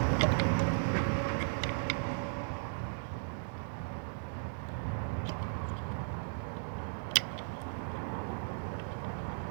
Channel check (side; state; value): left; silent; digital silence